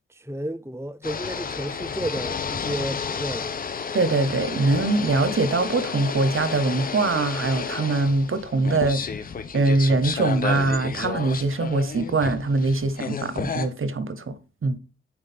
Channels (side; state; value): both; normal; correlation 0.45